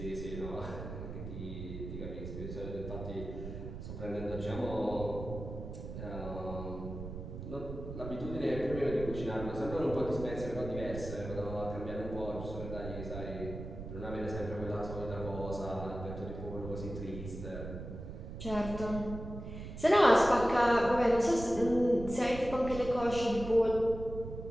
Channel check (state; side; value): noise; right; rumble, 9 dB below the sound